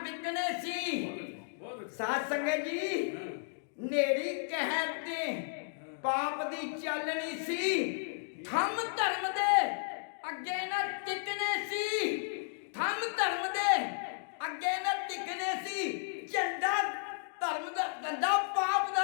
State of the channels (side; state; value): right; silent; digital silence